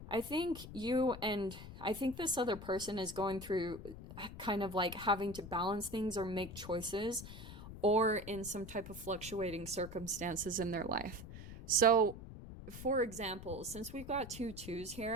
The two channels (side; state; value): left; noise; rumble, 12 dB below the sound